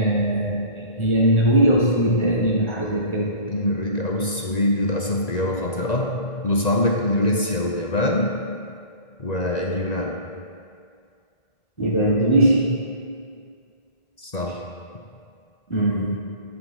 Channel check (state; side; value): late; right; 1.9 ms